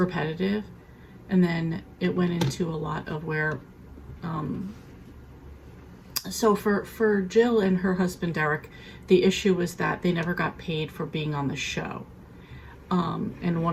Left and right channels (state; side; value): identical; both; correlation 1.00